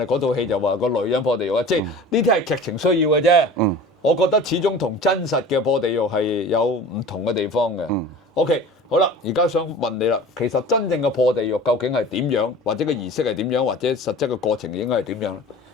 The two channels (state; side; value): normal; both; correlation 0.39